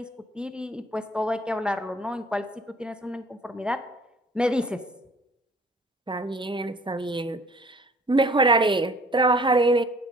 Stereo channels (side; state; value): both; normal; correlation 0.53